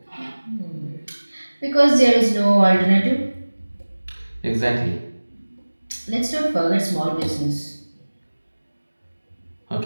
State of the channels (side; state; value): both; inverted; correlation -1.00